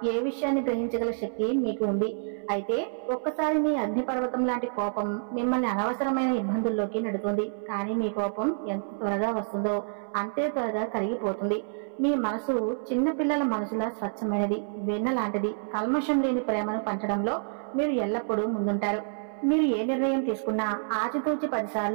ఏ విషయాన్ని గ్రహించగల శక్తి మీకు ఉంది. అయితే ఒక్కసారి మీ అగ్నిపర్వతం లాంటి కోపం మిమ్మల్ని అనవసరమైన ఇబ్బందుల్లోకి నెడుతుంది. కానీ మీ కోపం ఎంత త్వరగా వస్తుందో అంతే త్వరగా కరిగిపోతుంది. మీ మనసు చిన్న పిల్లల మనసులా స్వచ్ఛమైనది, వెన్న లాంటిది. కల్మషం లేని ప్రేమను పంచడంలో మీరు ఎల్లప్పుడూ ముందుంటారు. మీరు ఏ నిర్ణయం తీసుకున్నా ఆచితూచి 10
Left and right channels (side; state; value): left; silent; 59 dB below the other